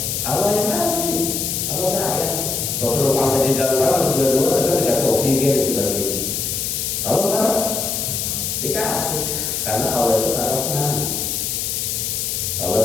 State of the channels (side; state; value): left; noise; hiss, 1 dB below the sound